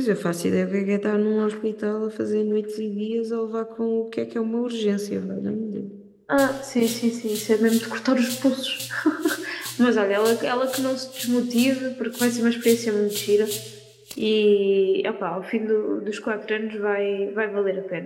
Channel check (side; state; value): both; identical; correlation 1.00